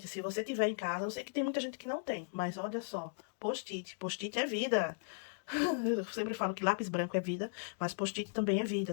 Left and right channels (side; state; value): right; silent; digital silence